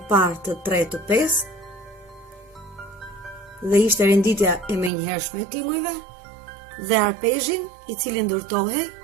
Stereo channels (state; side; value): drops out; left; at 4.9 s